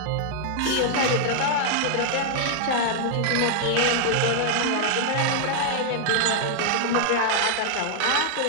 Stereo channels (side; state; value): both; different; correlation -0.01